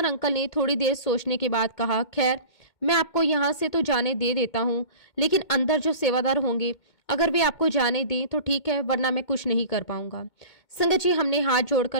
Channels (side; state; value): right; late; 2.2 ms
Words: अंकल ने थोड़ी देर सोचने के बाद कहा, खैर मैं आपको यहाँ से तो जाने दे देता हूँ, लेकिन अंदर जो सेवादार होंगे अगर वे आपको जाने दें तो ठीक है, वरना मैं कुछ नहीं कर पाऊंगा। संगत जी हमने हाथ जोड़कर